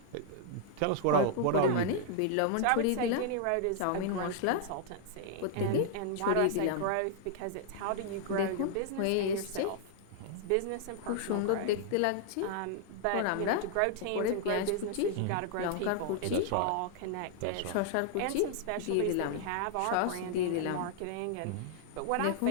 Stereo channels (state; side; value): different; both; correlation -0.01